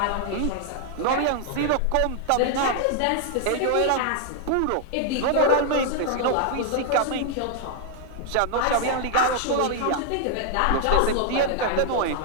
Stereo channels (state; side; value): different; both; correlation 0.00